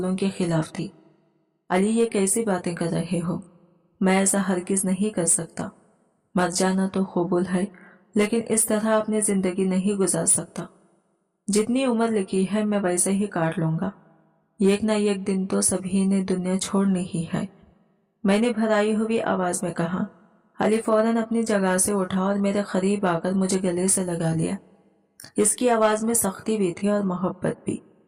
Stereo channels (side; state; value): both; identical; correlation 1.00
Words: के खिलाफ थी। अली ये कैसी बातें कर रहे हो? मैं ऐसा हरगिज नहीं कर सकता। मर जाना तो कबूल है, लेकिन इस तरह अपनी जिंदगी नहीं गुजार सकता। जितनी उम्र लिखी है मैं वैसे ही काट लूंगा। एक ना एक दिन तो सभी ने दुनिया छोड़नी ही है, मैंने भराई हुई आवाज में कहा। अली फौरन अपनी जगह से उठा और मेरे करीब आकर मुझे गले से लगा लिया। इसकी आवाज में सख्ती भी थी और मोहब्बत भी।